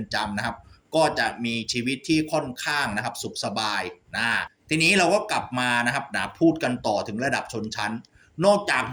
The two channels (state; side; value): identical; both; correlation 1.00